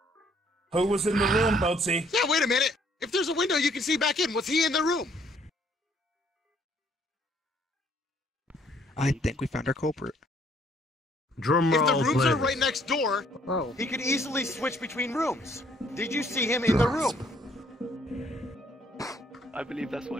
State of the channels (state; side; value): normal; both; correlation 0.64